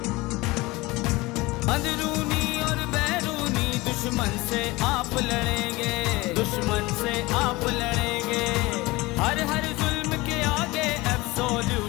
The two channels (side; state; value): right; quieter; 21.7 dB